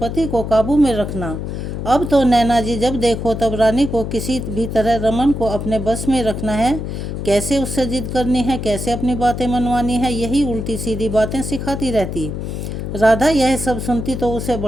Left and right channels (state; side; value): noise; left; hum, 5 dB below the sound